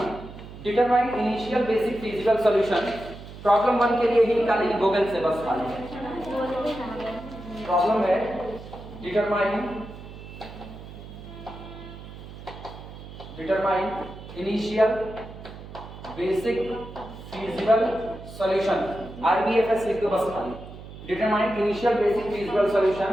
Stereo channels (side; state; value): right; noise; hum, 14 dB below the sound